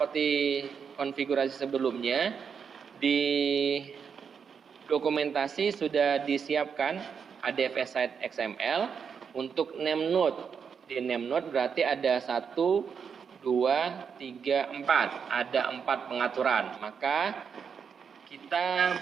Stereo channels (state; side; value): quieter; left; 6.6 dB